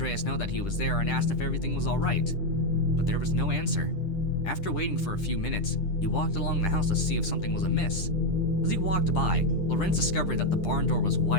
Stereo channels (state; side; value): late; right; 10 ms